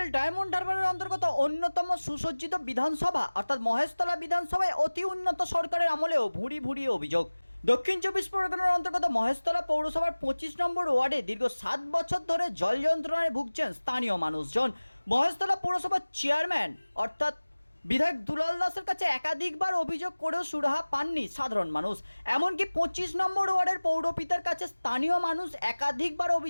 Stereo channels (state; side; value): inverted; both; correlation -1.00